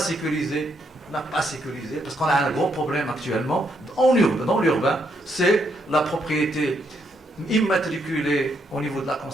parce qu'on a un gros problème actuellement dans l'urbain, c'est la propriété immatriculée au niveau de la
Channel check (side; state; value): both; normal; correlation 0.76